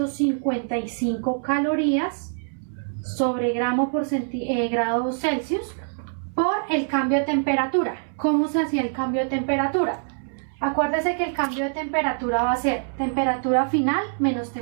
calorías sobre gramo por grado Celsius por el cambio de temperatura. ¿Cómo se hacía el cambio de temperatura? Acuérdese que el cambio de temperatura va a ser temperatura final menos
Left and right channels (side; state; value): left; silent; 62 dB below the other